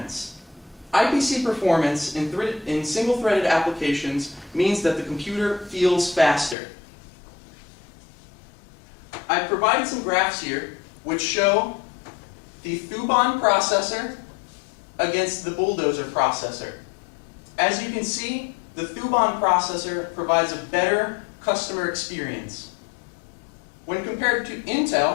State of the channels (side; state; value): right; drops out; at 6.6 s